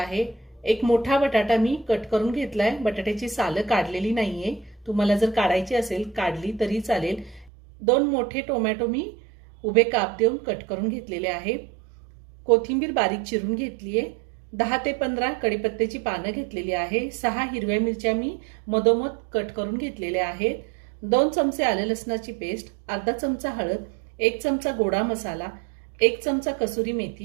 एक मोठा बटाटा मी कट करून घेतलाय, बटाट्याची सालं काढलेली नाहीये, तुम्हाला जर काढायची असेल काढली तरी चालेल। 2 मोठे टोमॅटो मी उभे काप देऊन कट करून घेतलेले आहे। कोथिंबीर बारीक चिरून घेतलीये। 10 ते 15 कढीपत्त्याची पानं घेतलेली आहे। 6 हिरव्या मिरच्या मी मधोमध कट करून घेतलेल्या आहेत। 2 चमचे आले लसणाची पेस्ट, अर्धा चमचा हळद, 1 चमचा गोडा मसाला, 1 चमचा कसुरी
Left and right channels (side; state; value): left; drops out; at 7.5 s